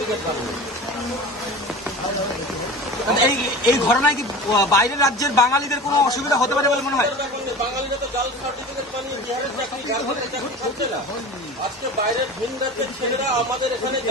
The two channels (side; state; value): both; normal; correlation 0.34